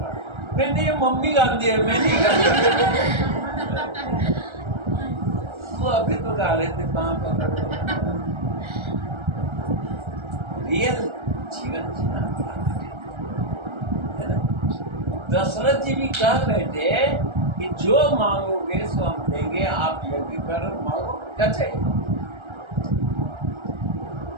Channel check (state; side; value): late; left; 1.3 ms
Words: नहीं ये मम्मी गाती है, मैं नहीं गाती। वो अभी तो गा रहे थे पाँव पकड़ लो। रियल जीवन जीना है ना। दशरथ जी भी कह बैठे कि जो मांगोगे सो हम देंगे, आप योगी कर मांगो क्या चाहिए।